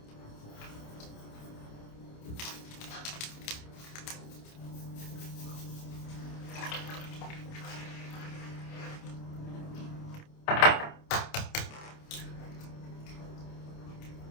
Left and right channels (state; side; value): late; right; 28 ms